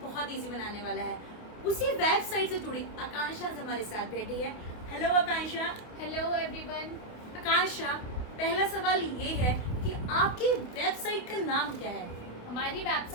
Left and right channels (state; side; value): late; right; 28 ms